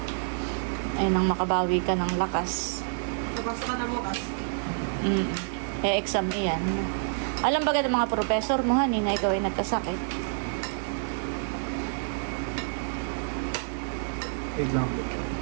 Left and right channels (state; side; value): silent; left; digital silence